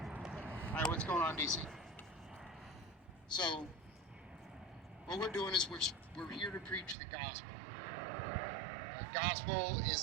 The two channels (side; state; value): left; drops out; at 7.0 s